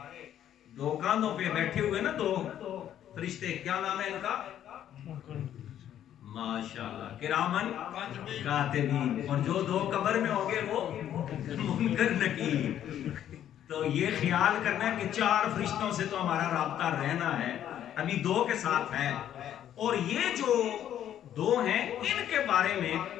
دو کاندھوں پہ بیٹھے ہوئے نا دو فرشتے، کیا نام ہے ان کا؟ ماشاءاللہ کرامن کاتبین. اور جو دو قبر میں ہوں گے وہ منکر نکیر. تو یہ خیال کرنا ہے کہ 4 فرشتوں سے تو ہمارا رابطہ رہنا ہے، ابھی 2 کے ساتھ ہے. اور یہ جو 2 ہیں ان کے بارے میں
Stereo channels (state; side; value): quieter; right; 10.7 dB